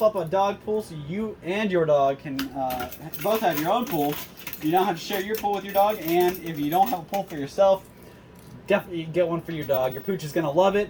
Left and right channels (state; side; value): identical; both; correlation 1.00